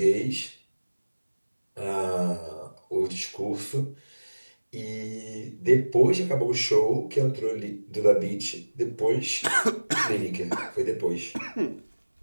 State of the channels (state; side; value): inverted; both; correlation -1.00